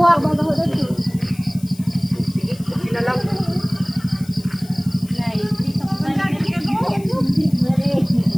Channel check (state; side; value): noise; left; hiss, 22 dB below the sound